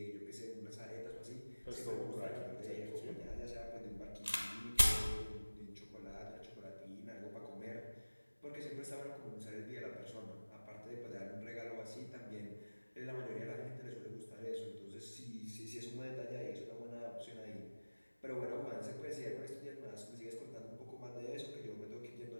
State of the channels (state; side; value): inverted; both; correlation -1.00